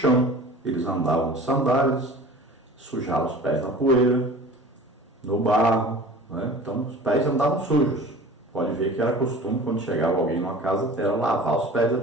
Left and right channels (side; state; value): both; normal; correlation 0.41